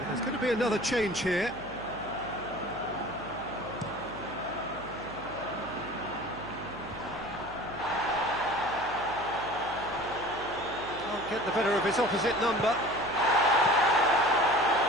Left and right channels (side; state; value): right; noise; hum, 15 dB below the sound